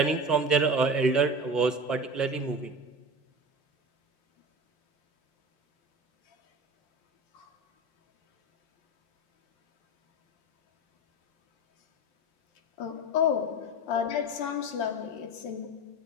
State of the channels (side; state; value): right; late; 5.7 ms